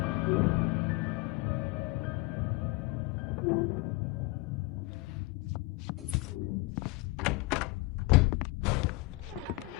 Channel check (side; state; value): right; quieter; 22.3 dB